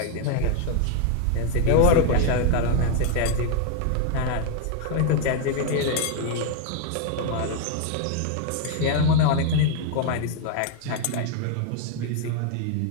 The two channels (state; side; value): different; both; correlation 0.01